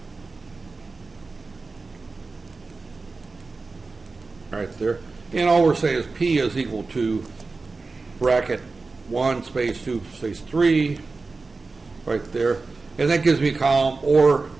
Right there. And all we're saying is P is equal to bracket 1 space 2 space 3 right there. And that gives me a column, or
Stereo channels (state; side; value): quieter; left; 3.9 dB